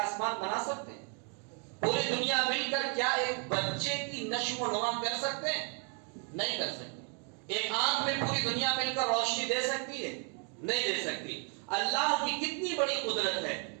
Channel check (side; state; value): left; quieter; 39.7 dB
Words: بنا سکتے ہیں؟ پوری دنیا مل کر کیا ایک بچے کی نشو و نما کر سکتے ہیں؟ نہیں کر سکتے. ایک آنکھ میں پوری دنیا مل کر روشنی دے سکتی ہے؟ نہیں دے سکتی. اللہ کی کتنی بڑی قدرت ہے